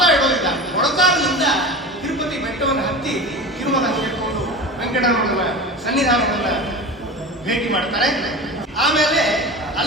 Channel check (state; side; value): normal; both; correlation 0.31